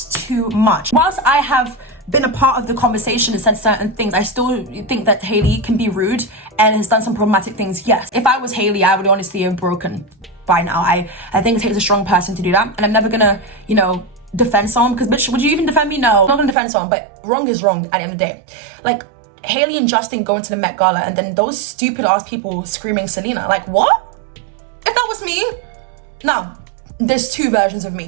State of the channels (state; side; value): drops out; left; at 16.6 s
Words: too much. Whilst I have been a part of the conversation and said certain things, I still think that Hailey can be rude and has done some problematic things. Yes, if I was Hailey, I would honestly have broken by now. I think it takes a strong person to do that, and I'm never gonna, you know, defend someone, because bitch, would you even defend me? No, I'm not gonna defend someone, but wrong is wrong at the end of the day. Like, Hailey and Justin going to the Met Gala and then those stupid ass people screaming Selena. Like, what? If that was me, now, there's 2 versions of